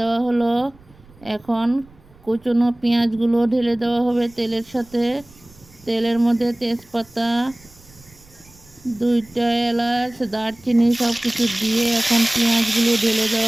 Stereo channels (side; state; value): right; noise; rumble, 26 dB below the sound